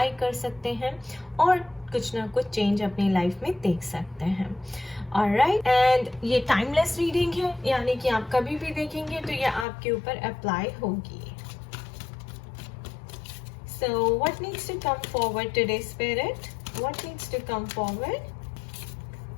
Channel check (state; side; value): drops out; right; at 9.7 s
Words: कर सकते हैं और कुछ ना कुछ चेंज अपनी लाइफ में देख सकते हैं। ऑलराइट, एंड ये टाइमलेस रीडिंग है, यानी कि आप कभी भी देखेंगे तो ये आपके ऊपर अप्लाई होगी। So what needs to come forward today, Spirit? What needs to come forward?